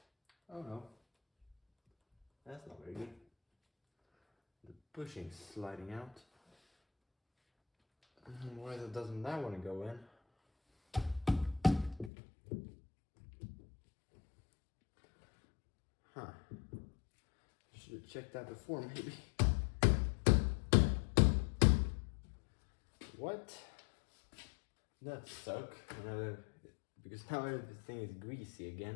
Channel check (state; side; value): drops out; right; at 12.1 s